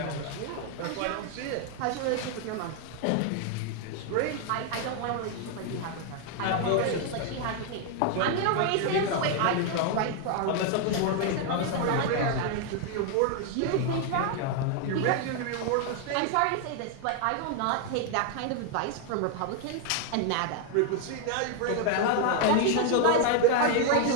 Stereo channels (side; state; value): both; different; correlation 0.00